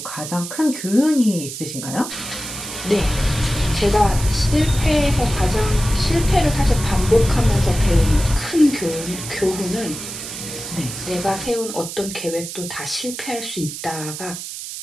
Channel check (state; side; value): noise; right; hiss, 9 dB below the sound